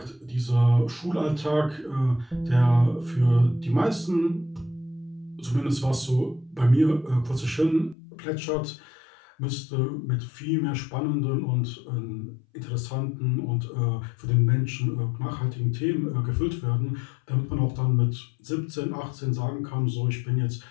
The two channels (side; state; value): right; drops out; at 8.0 s